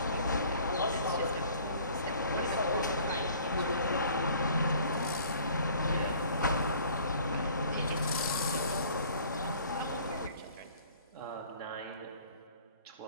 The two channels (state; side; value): inverted; both; correlation -0.52